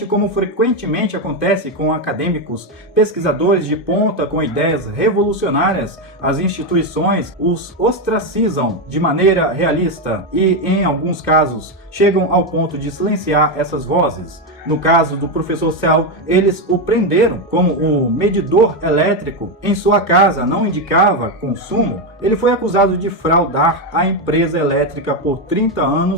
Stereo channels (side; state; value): both; normal; correlation 0.08